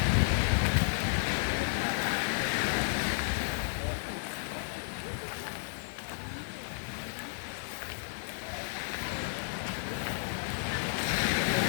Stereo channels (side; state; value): right; silent; digital silence